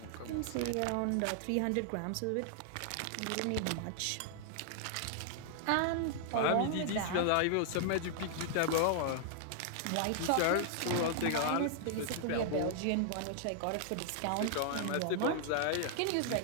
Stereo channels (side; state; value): both; different; correlation -0.01